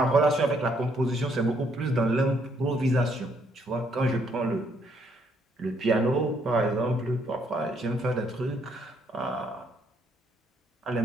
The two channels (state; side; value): normal; both; correlation 0.70